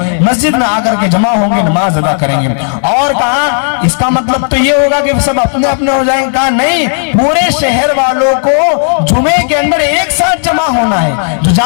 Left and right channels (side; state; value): right; silent; 73 dB below the other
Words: مسجد میں آ کر کے جمع ہوں گے, نماز ادا کریں گے. اور کہا اس کا مطلب تو یہ ہوگا کہ سب اپنے اپنے ہو جائیں گے؟ کہا نہیں, پورے شہر والوں کو جمعے کے اندر ایک ساتھ جمع ہونا ہے, جو